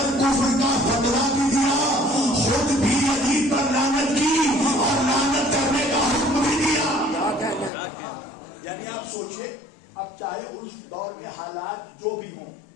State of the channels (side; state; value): right; drops out; at 7.7 s